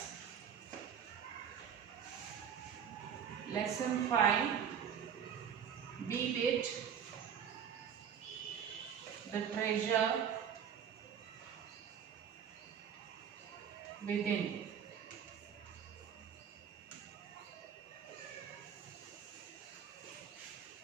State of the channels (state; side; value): quieter; left; 8.2 dB